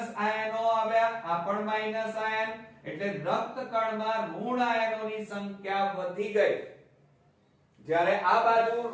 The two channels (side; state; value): both; identical; correlation 1.00